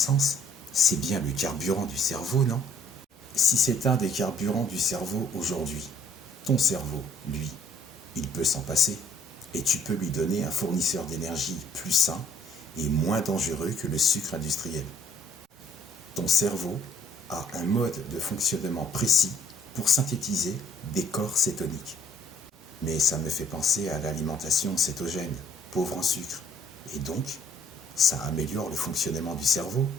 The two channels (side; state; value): both; normal; correlation 0.61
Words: C'est bien le carburant du cerveau, non? Si c'est un des carburants du cerveau aujourd'hui, ton cerveau, lui, il peut s'en passer. Et tu peux lui donner un fournisseur d'énergie plus sain et moins dangereux que le sucre industriel. Ton cerveau a un mode de fonctionnement précis pour synthétiser des corps cétoniques. Mais ça me fait penser à l'alimentation cétogène, pauvre en sucre. Et donc, ça améliore le fonctionnement du cerveau,